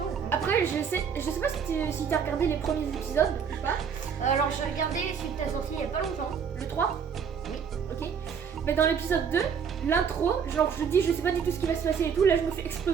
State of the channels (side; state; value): left; quieter; 6.9 dB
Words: Hein. Après, je sais pas si t'as regardé les premiers épisodes ou pas. Alors j'ai regardé celui que t'as sorti il y a pas longtemps. Le 3? Oui. Ok. Mais dans l'épisode 2, l'intro, genre je dis je sais pas du tout ce qui va se passer et tout, là je me fais